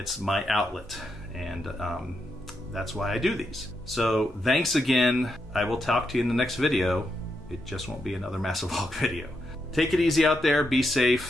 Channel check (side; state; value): both; normal; correlation 0.83